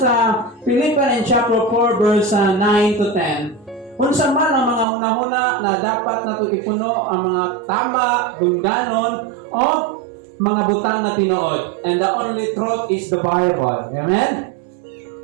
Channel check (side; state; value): left; drops out; at 4.9 s